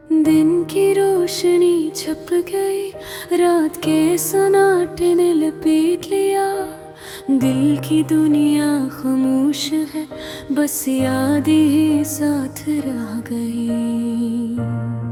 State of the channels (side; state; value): both; identical; correlation 1.00